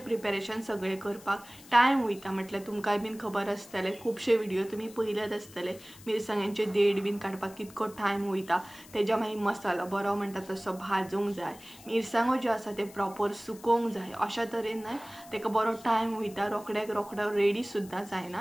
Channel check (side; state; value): left; noise; hiss, 21 dB below the sound